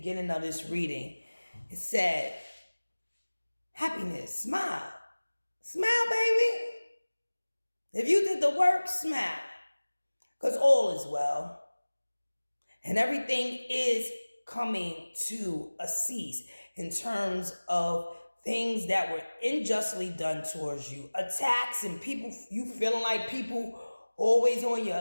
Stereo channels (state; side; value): inverted; both; correlation -1.00